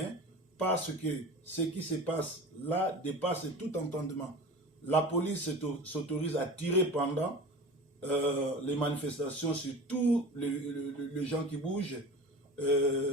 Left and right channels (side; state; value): both; normal; correlation 0.35